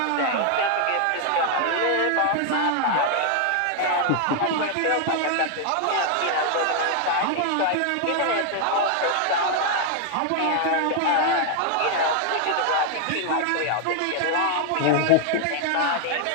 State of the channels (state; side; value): different; both; correlation 0.00